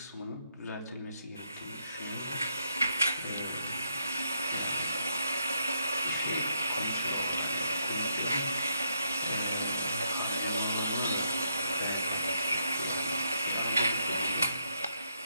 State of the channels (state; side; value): inverted; both; correlation -0.77